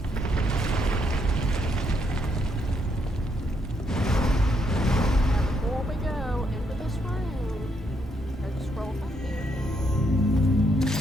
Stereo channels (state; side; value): normal; both; correlation 0.75